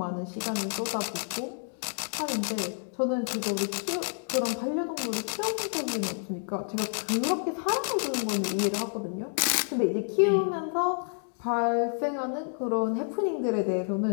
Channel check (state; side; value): silent; right; 58 dB below the other